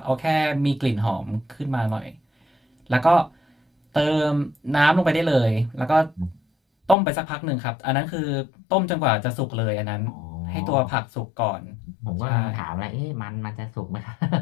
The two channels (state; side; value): drops out; right; at 7.0 s